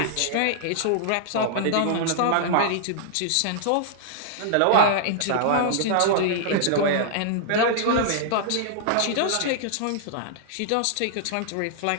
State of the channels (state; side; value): different; both; correlation -0.01